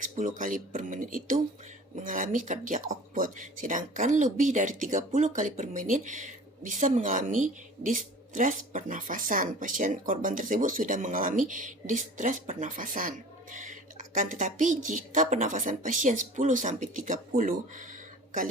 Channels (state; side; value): normal; both; correlation 0.43